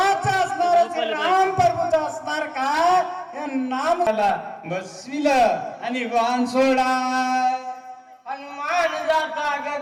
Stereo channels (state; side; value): identical; both; correlation 1.00